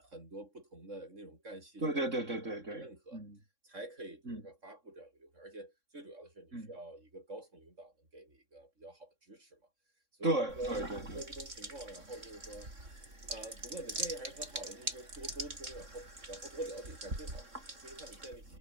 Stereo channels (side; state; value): left; late; 3.6 ms